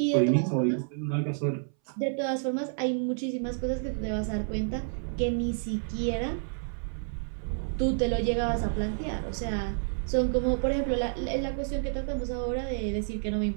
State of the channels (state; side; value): silent; left; 58 dB below the other